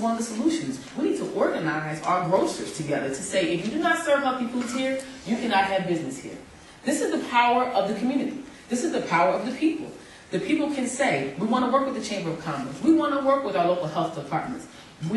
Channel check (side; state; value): both; identical; correlation 1.00